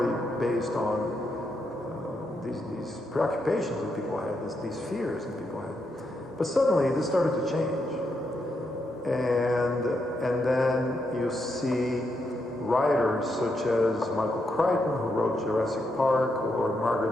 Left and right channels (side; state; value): both; normal; correlation 0.81